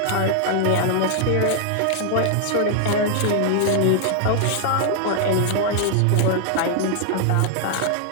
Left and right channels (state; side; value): different; both; correlation 0.00